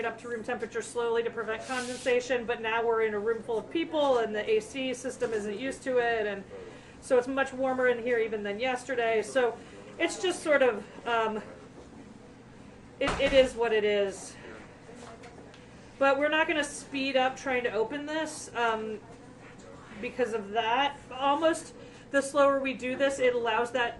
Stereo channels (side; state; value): both; identical; correlation 1.00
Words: up to room temperature slowly to prevent condensation, but now we're in a room full of people and the AC system isn't used to it, and so it's much warmer in here even than yesterday. So it's just sort of, it is what it is. But we're not going to speed up trying to open this because of that. Almost the slower we do this, it allows that